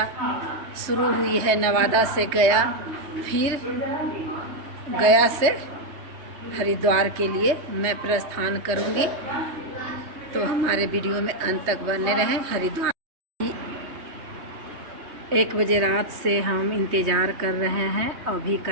शुरू हुई है नवादा से गया, फिर गया से हरिद्वार के लिए मैं प्रस्थान करूँगी। तो हमारे वीडियो में अंत तक बने रहें। हरिद्वार 1 बजे रात से हम इंतज़ार कर रहे हैं। अभी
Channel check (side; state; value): left; late; 3.2 ms